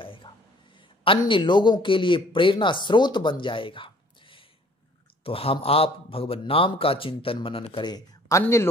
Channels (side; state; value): both; normal; correlation 0.55